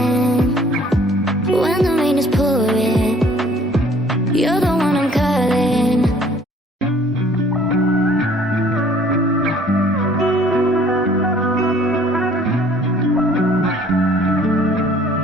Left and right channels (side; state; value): both; normal; correlation 0.56